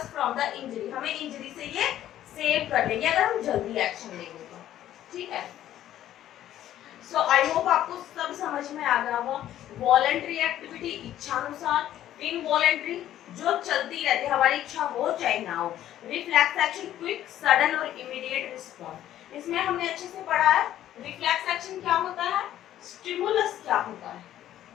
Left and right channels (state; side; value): quieter; right; 12.3 dB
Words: from the injury, हमें इंजरी से ये सेव कर लेंगे अगर हम जल्दी एक्शन लेंगे तो, ठीक है। सो आई होप आपको सब समझ में आ गया होगा। वॉलंटरी एक्टिविटी इच्छानुसार, इनवॉलंटरी जो चलती रहती है, हमारी इच्छा हो चाहे ना हो। रिफ्लेक्स एक्शन क्विक सडन और इमीडिएट रिस्पॉन्स, इसमें हमने अच्छे से पढ़ा है रिफ्लेक्स एक्शन क्या होता है, स्टिमुलस क्या होता है,